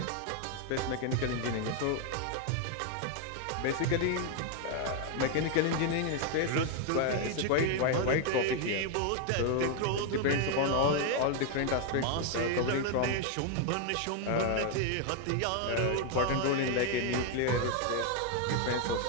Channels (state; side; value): different; both; correlation 0.01